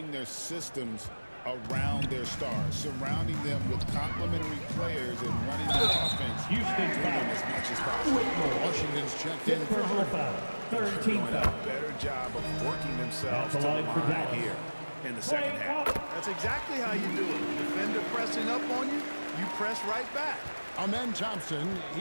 their systems around their stars, surrounding them with complementary players and running the offense through them as much as possible. Washington's checked in for Hardy. Doing a better job of working themselves to the line here in the second half. That's exactly how you do it. Defender pressing up on you, you press right back. Amen Thompson,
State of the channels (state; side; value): inverted; both; correlation -1.00